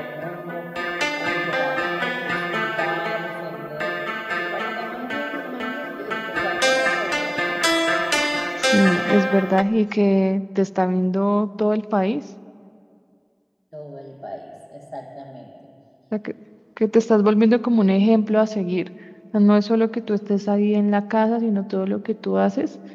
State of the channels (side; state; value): both; identical; correlation 1.00